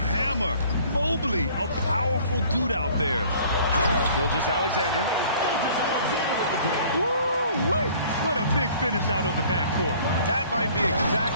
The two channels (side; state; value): both; inverted; correlation -0.53